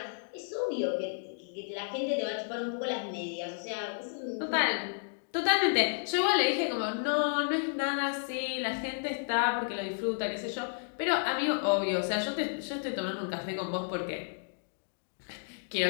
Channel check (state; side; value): silent; right; digital silence